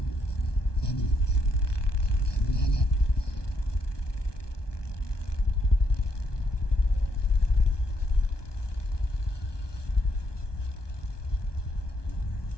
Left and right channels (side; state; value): right; late; 1.2 ms